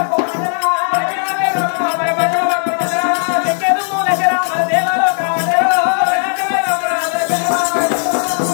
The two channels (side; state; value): right; silent; 62 dB below the other